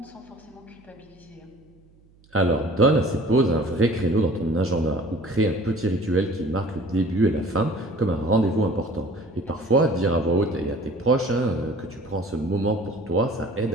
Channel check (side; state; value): right; noise; hum, 30 dB below the sound